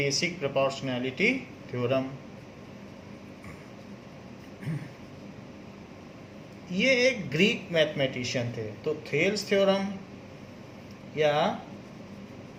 प्रोपोर्शनैलिटी थ्योरम। ये एक ग्रीक मैथमेटिशियन थे। तो थेल्स थ्योरम या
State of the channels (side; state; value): both; identical; correlation 1.00